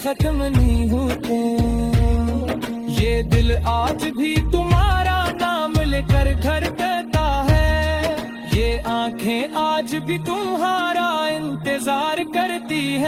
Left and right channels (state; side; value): identical; both; correlation 1.00